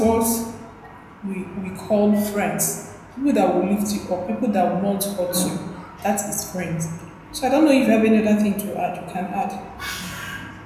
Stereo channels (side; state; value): both; identical; correlation 1.00